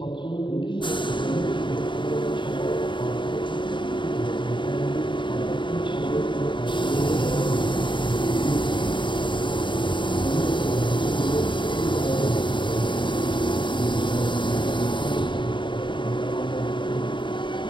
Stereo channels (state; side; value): late; right; 0.23 ms